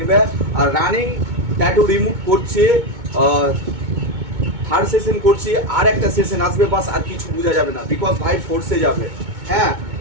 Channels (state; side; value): late; left; 2.2 ms